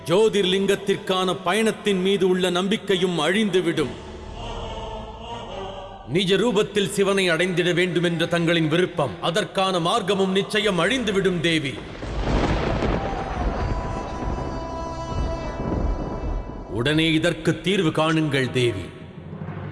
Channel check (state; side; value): identical; both; correlation 1.00